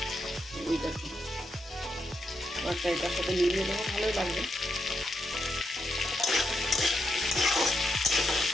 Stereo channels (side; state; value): both; normal; correlation 0.83